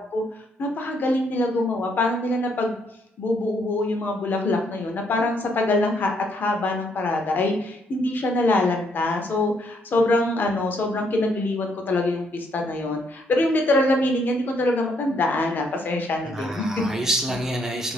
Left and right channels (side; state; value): both; normal; correlation 0.71